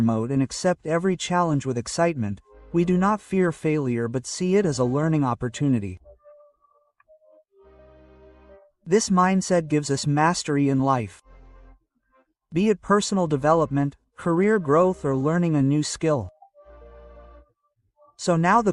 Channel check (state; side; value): identical; both; correlation 1.00